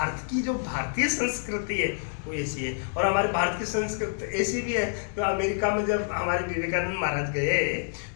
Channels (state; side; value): silent; right; digital silence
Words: की जो भारतीय संस्कृति है वो ऐसी है। और हमारे भारत की संस्कृति ऐसी भी है तो अमेरिका में जब हमारे विवेकानंद महाराज गए